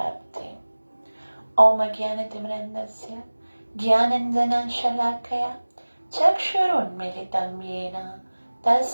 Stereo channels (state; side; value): inverted; both; correlation -1.00